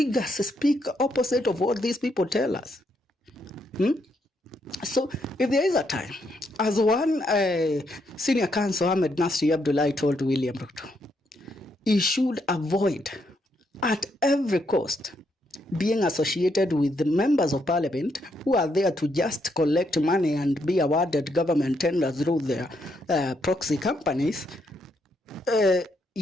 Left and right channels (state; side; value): normal; both; correlation 0.76